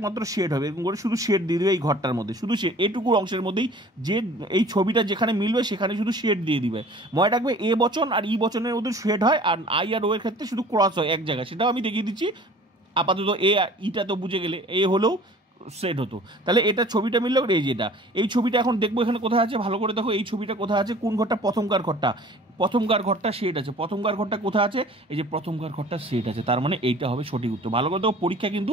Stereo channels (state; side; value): normal; both; correlation 0.48